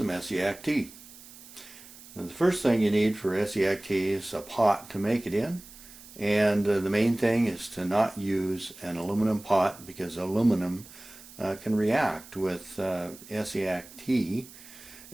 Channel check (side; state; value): right; noise; hiss, 19 dB below the sound